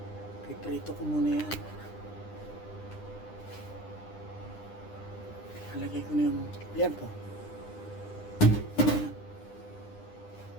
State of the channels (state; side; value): late; right; 9.9 ms